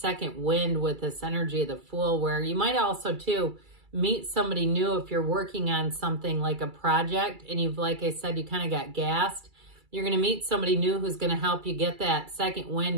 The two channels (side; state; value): left; late; 2.3 ms